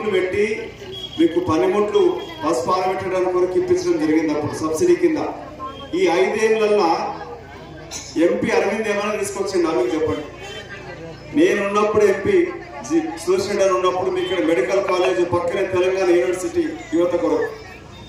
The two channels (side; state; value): both; identical; correlation 1.00